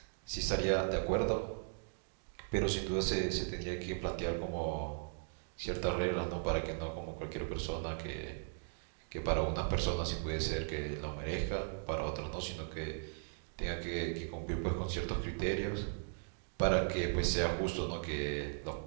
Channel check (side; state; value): left; silent; digital silence